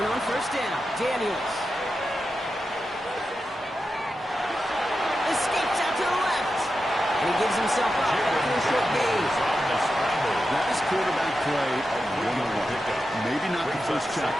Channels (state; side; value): normal; both; correlation 0.90